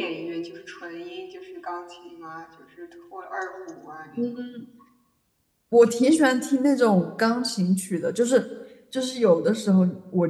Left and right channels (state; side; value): identical; both; correlation 1.00